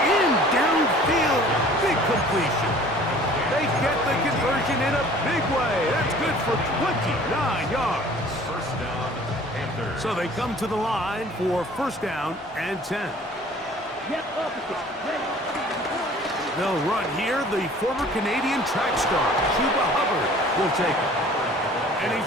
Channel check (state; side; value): normal; both; correlation 0.50